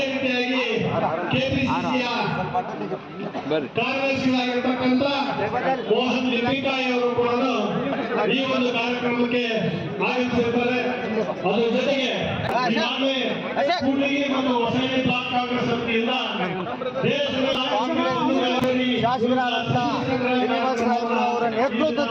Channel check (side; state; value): both; identical; correlation 1.00